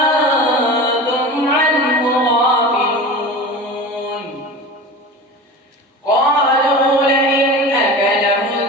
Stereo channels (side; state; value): both; normal; correlation 0.33